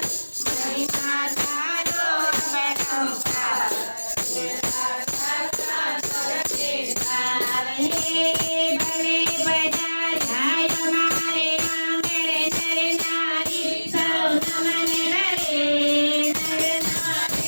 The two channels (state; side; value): inverted; both; correlation -1.00